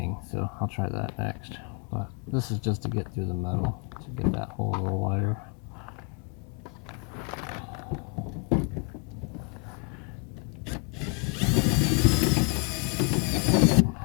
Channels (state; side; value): quieter; right; 35.2 dB